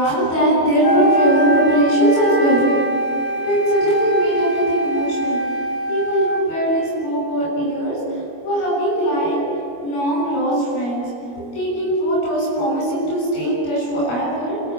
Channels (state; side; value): late; right; 25 ms